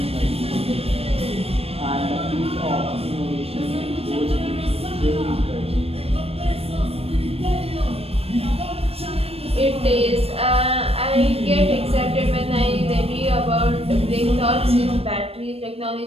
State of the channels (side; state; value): left; late; 0.28 ms